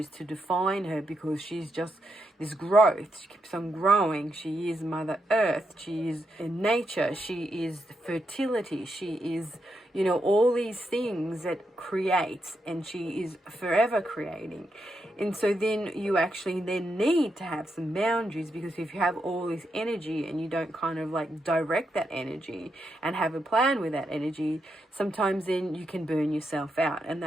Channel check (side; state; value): both; normal; correlation 0.82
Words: to define her because she's just this growth. She keeps on growing. She is Mother Earth. She is in nature. She is fertility. She is, you know, all these things that creates, and she is forever creating. And so then you actually then need to have some boundaries, because if you have all this energy and you don't kind of like direct that energy and have a plan with that energy, sometimes then you can burn yourself out. And